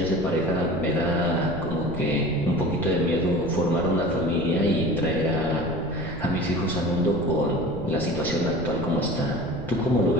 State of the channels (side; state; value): right; noise; rumble, 11 dB below the sound